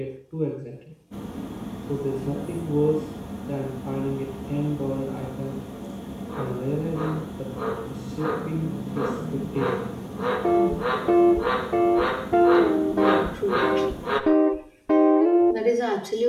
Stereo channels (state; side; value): identical; both; correlation 1.00